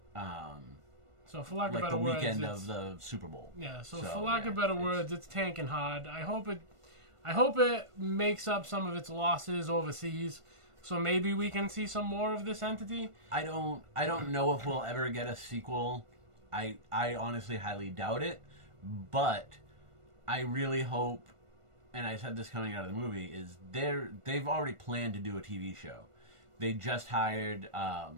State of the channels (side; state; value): left; late; 1.5 ms